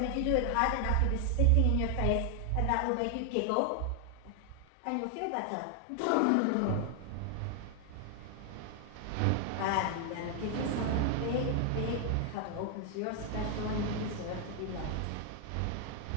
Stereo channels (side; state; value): both; different; correlation 0.00